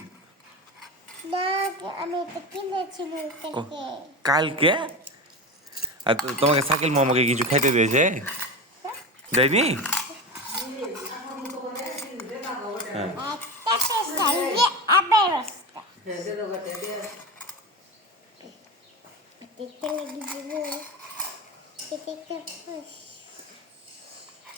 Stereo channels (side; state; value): both; normal; correlation 0.22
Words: কালকে? আর তোমাকে শাকিল মামাকে কিছু খাইতে দিয়েছে? দেয়নি? হ্যাঁ,